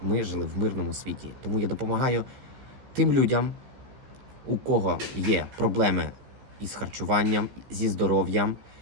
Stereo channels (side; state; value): left; late; 15 ms